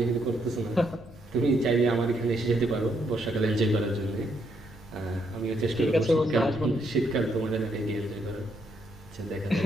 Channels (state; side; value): normal; both; correlation 0.75